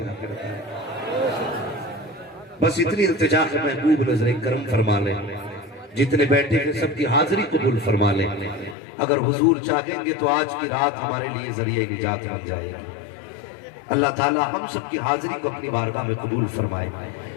बस इतनी इल्तिजा है महबूब नजर करम फरमा लें, जितने बैठे हैं सबकी हाजिरी कबूल फरमा लें। अगर हुजूर चाहेंगे तो आज की रात हमारे लिए जरिए निजात बन जाएगी। अल्लाह ताला हम सबकी हाजिरी को अपनी बारगाह में कबूल फरमाए।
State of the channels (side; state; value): right; drops out; at 8.8 s